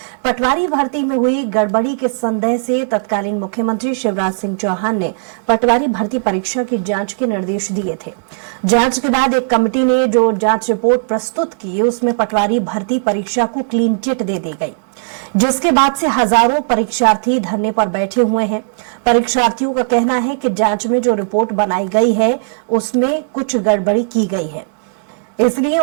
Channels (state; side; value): silent; left; digital silence